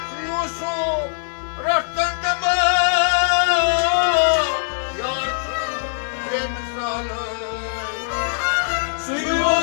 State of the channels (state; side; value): silent; right; digital silence